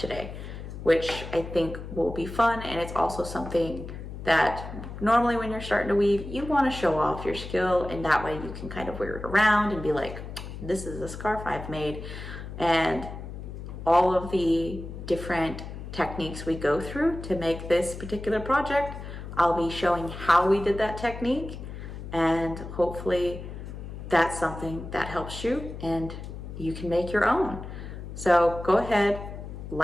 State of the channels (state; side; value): noise; left; hum, 10 dB below the sound